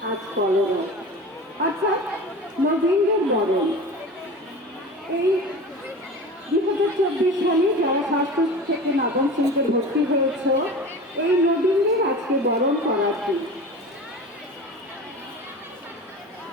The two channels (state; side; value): normal; both; correlation 0.34